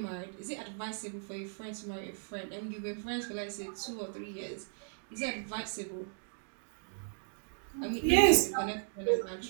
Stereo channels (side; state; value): left; silent; digital silence